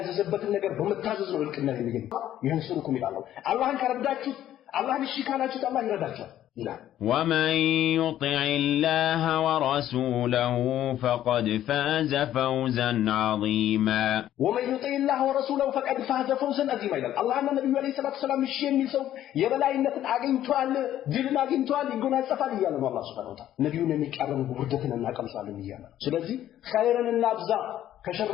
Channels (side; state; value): right; quieter; 12.1 dB